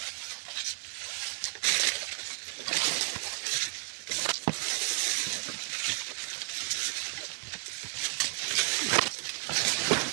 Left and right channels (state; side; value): silent; left; digital silence